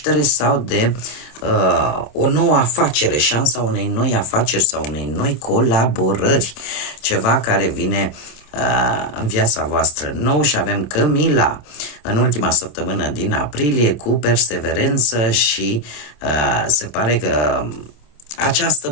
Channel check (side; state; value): right; late; 27 ms